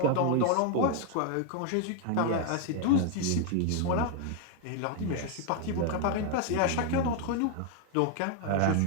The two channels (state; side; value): different; both; correlation 0.00